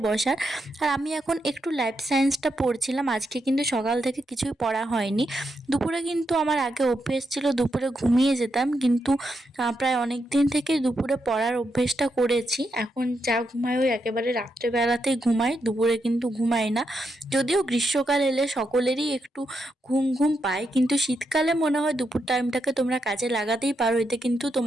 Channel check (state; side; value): normal; both; correlation 0.83